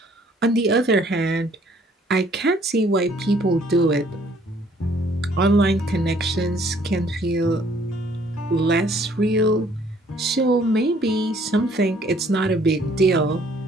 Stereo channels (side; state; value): both; normal; correlation 0.61